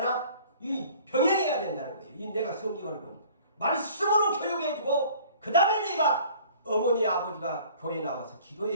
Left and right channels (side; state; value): both; inverted; correlation -0.50